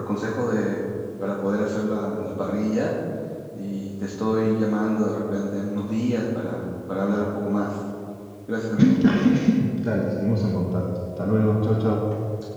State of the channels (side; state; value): both; identical; correlation 1.00